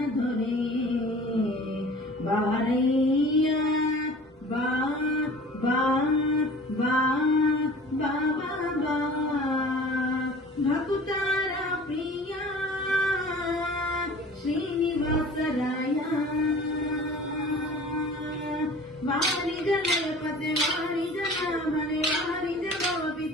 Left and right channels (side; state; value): both; normal; correlation 0.44